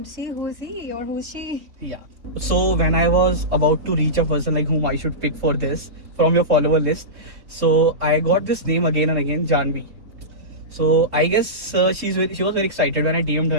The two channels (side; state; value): left; late; 3.2 ms